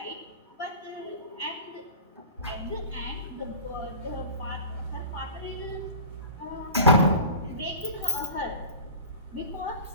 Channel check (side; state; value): both; inverted; correlation -0.36